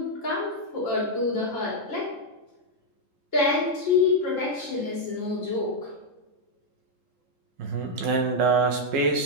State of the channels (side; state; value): left; late; 3.7 ms